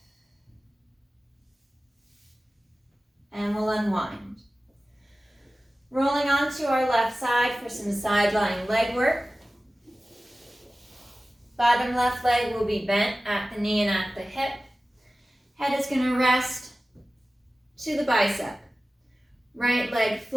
And we'll unwind. Rolling onto our left side for some side lying leg work. Bottom left leg will be bent at the knee and at the hip. Head is going to rest to the bicep. Right leg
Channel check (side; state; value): both; normal; correlation 0.96